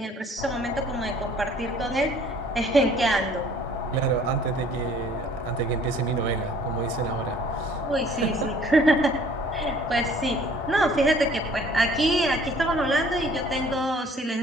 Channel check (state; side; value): normal; both; correlation 0.55